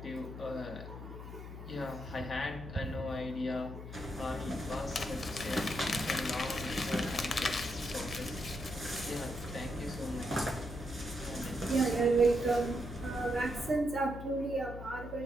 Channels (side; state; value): left; noise; hum, 10 dB below the sound